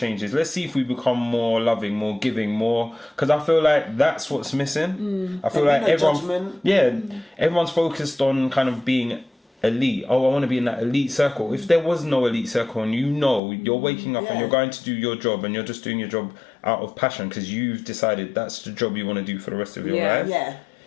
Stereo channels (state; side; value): drops out; right; at 13.4 s